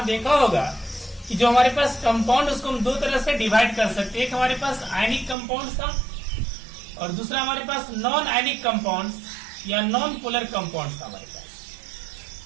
देखा होगा कि जो हमारे पास कंपाउंड उसको हम दो तरह से डिवाइड कर सकते हैं। एक हमारे पास आयनिक कंपाउंड था और दूसरा हमारे पास नॉन आयनिक कंपाउंड या नॉन पोलर कंपाउंड था हमारे पास।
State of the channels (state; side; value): drops out; left; at 5.4 s